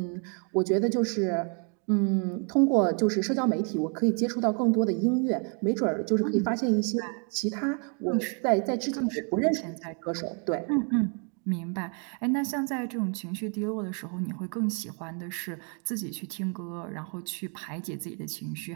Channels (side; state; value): left; quieter; 39.4 dB